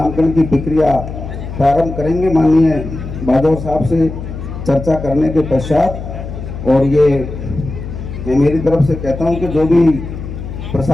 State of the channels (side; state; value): left; noise; hum, 9 dB below the sound